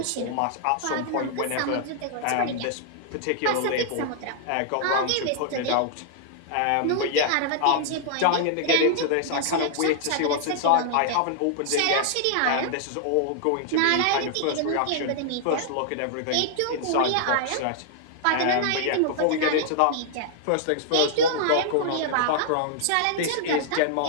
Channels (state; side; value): different; both; correlation -0.01